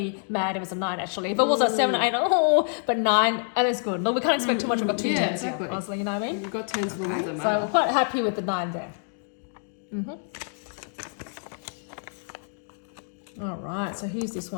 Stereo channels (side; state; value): right; silent; 60 dB below the other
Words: mad if it's a 9 actually. If it was a 7 or 8, but 9, and it's good. Look, we can't expect too much. We've got 2 Yeah, 10s exactly. here, honestly, you know what I mean? You've got 10s for the ones that So matter. we're quite happy with the 9 there. All right, so here's this